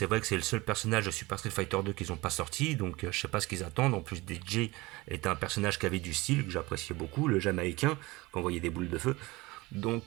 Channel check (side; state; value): left; quieter; 22.0 dB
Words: vrai que c'est le seul personnage de Super Street Fighter 2 qu'ils n'ont pas sorti. Donc je sais pas ce qu'ils attendent. En plus DJ est un personnage qui avait du style, que j'appréciais beaucoup, le Jamaïcain, qui envoyait des boules de feu.